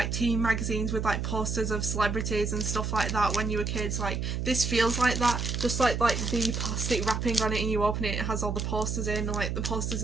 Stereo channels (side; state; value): right; noise; hum, 2 dB below the sound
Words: teen magazines with like posters of celebrities and stuff like that when you were kids, like this feels like that, just like the plastic wrapping on it, and you open it, it has all the posters in and like the posters